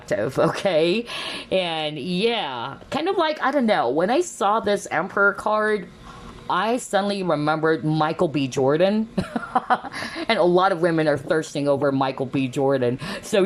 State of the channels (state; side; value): identical; both; correlation 1.00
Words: okay? And yeah, kind of like, I don't know, when I saw this Emperor card, I suddenly remembered Michael B. Jordan. And a lot of women are thirsting over Michael B. Jordan. So